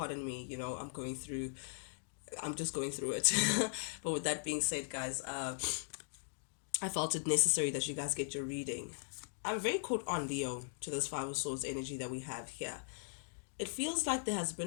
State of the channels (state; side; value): silent; right; digital silence